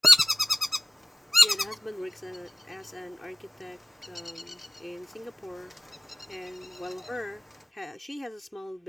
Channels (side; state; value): both; normal; correlation 0.92